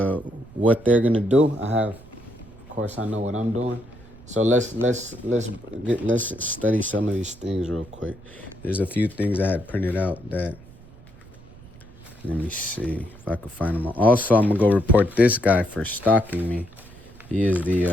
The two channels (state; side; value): noise; right; rumble, 21 dB below the sound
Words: what they're gonna do. Of course, I know what I'm doing. So let's study some of these things real quick. There's a few things I had printed out that. Let me see if I can find them all. Also, I'm gonna go report this guy for stalking me. He is